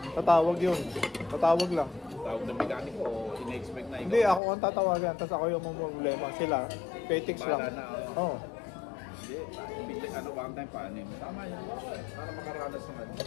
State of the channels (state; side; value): drops out; right; at 4.4 s